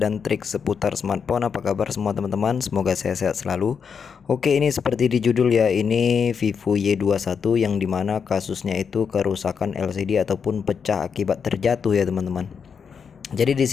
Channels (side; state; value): right; quieter; 6.4 dB